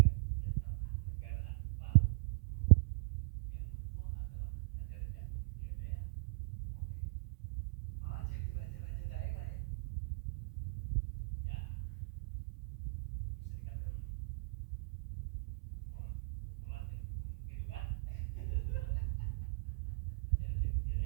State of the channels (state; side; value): quieter; left; 31.7 dB